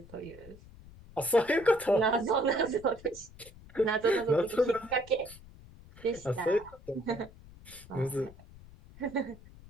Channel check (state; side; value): noise; left; rumble, 20 dB below the sound